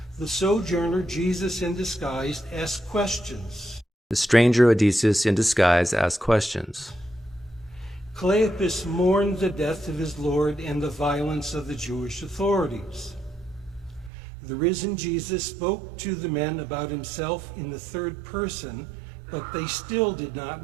The sojourner, Jesus in disguise, asked questions. The stranger, Odysseus in disguise, asked questions. Cleopas mourned the death of his Lord and the violence of the Jewish authorities. The risen Jesus spoke to the men about himself in the third person, but they still did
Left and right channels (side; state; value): left; drops out; at 14.1 s